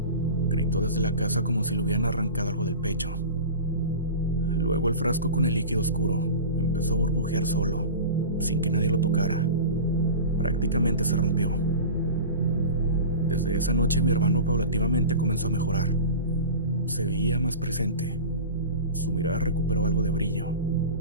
gritó desde la casa como si le hubieran arrancado algo del pecho. Luego el frasco con el líquido oscuro empezó a burbujear solo, sin que nadie lo tocara. Prácticamente se rompió. Desde esa noche mi hermano paulativamente comenzó a mejorar. Se veía más presente. Su mirada recuperó algo de brillo.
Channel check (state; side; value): inverted; both; correlation -0.33